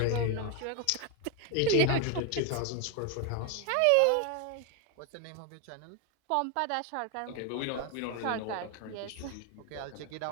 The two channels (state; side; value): different; both; correlation 0.01